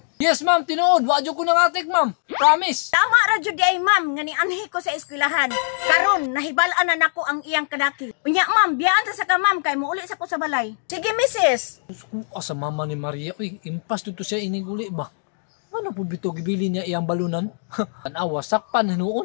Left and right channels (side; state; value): right; silent; digital silence